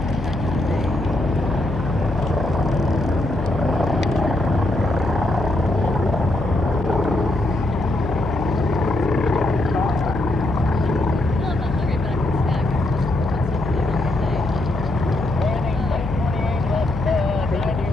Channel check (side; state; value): left; noise; hum, 6 dB below the sound